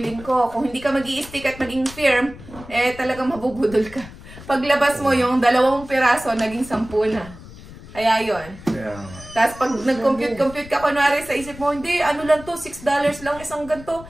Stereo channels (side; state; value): left; noise; rumble, 17 dB below the sound